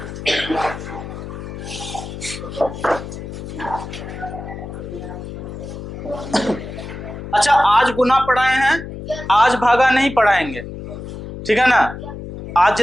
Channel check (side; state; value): left; noise; hum, 10 dB below the sound